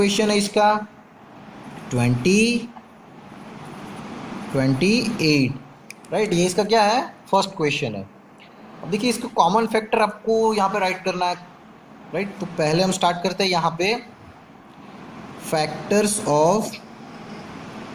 है इसका 28, राइट? ये इसका क्या है? फर्स्ट क्वेश्चन है। अब देखिए इसको कॉमन फैक्टर आपको यहाँ पे राइट करना है, राइट? तो पहले हम स्टार्ट करते हैं यहाँ पे फैक्टर्स ऑफ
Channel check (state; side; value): identical; both; correlation 1.00